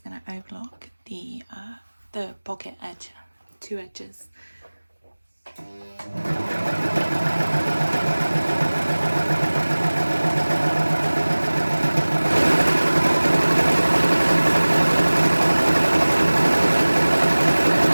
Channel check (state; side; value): inverted; both; correlation -1.00